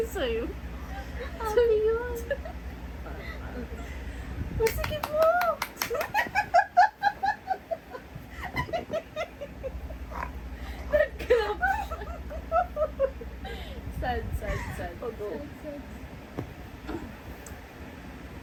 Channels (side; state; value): both; identical; correlation 1.00